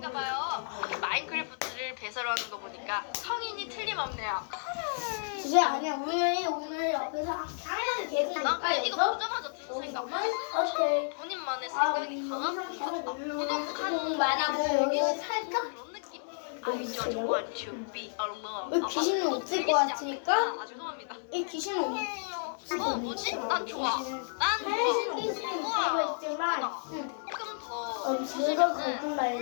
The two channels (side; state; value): right; silent; 55 dB below the other